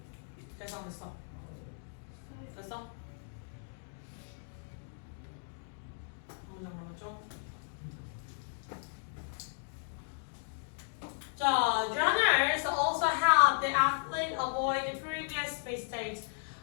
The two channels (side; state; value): right; silent; digital silence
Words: 됐어 안 됐어? 됐어? 문장 남았죠? 자, runners also help the athlete avoid the previous mistakes.